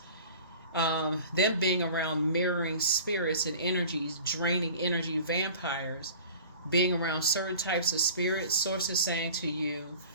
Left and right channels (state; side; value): inverted; both; correlation -0.43